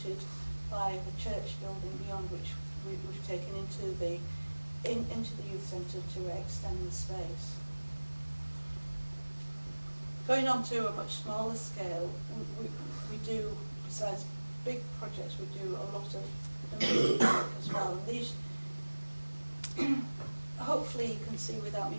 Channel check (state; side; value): inverted; both; correlation -1.00